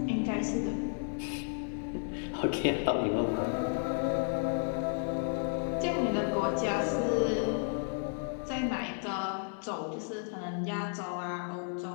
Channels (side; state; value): right; silent; 56 dB below the other